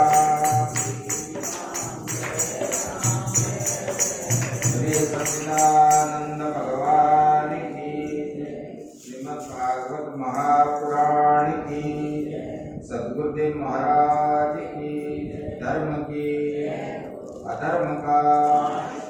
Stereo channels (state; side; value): identical; both; correlation 1.00